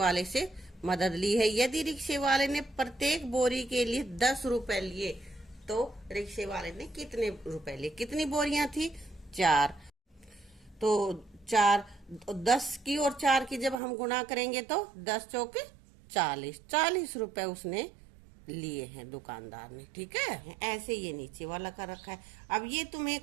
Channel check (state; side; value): drops out; left; at 13.8 s